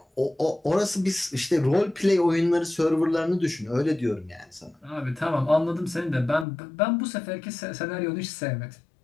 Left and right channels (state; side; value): drops out; right; at 6.5 s